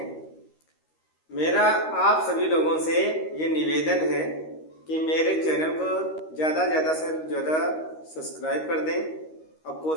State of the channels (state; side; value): late; right; 13 ms